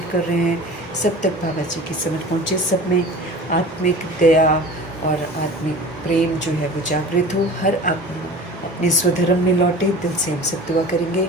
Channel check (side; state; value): both; normal; correlation 0.39